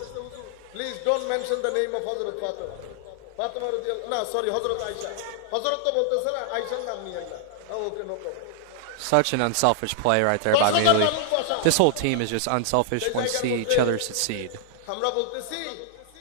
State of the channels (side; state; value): both; different; correlation -0.01